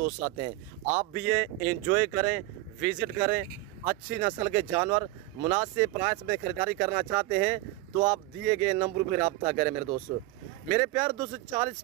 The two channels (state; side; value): quieter; left; 18.2 dB